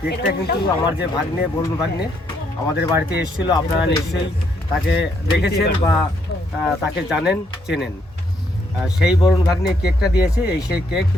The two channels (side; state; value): both; normal; correlation 0.73